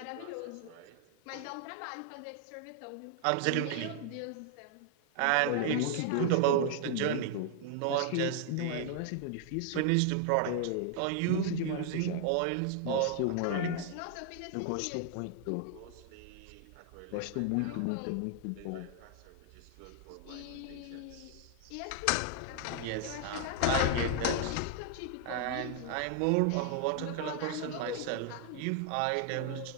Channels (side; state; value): both; different; correlation 0.00